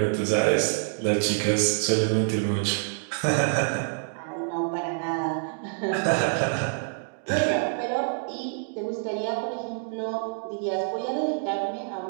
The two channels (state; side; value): silent; left; digital silence